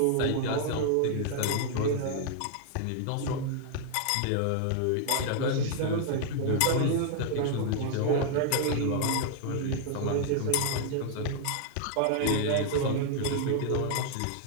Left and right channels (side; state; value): both; different; correlation 0.00